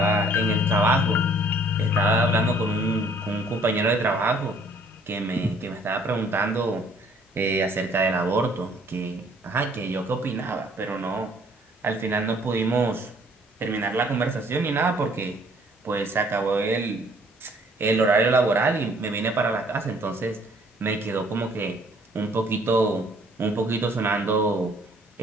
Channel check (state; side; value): normal; both; correlation 0.59